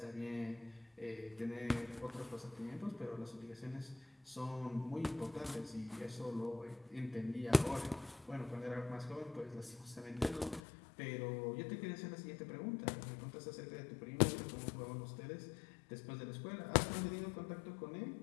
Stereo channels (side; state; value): right; drops out; at 10.6 s